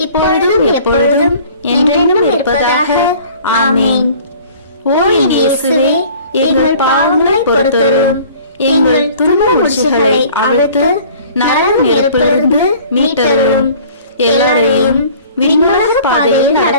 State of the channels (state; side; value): inverted; both; correlation -0.49